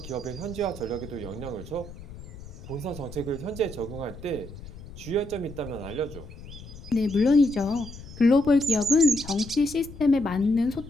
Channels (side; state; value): left; noise; rumble, 15 dB below the sound